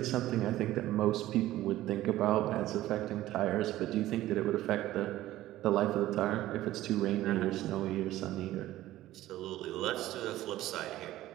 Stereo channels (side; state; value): left; quieter; 15.1 dB